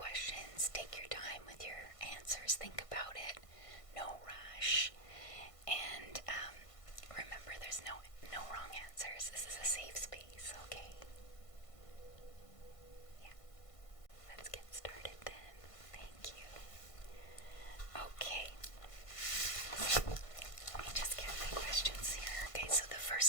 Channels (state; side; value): late; right; 1.5 ms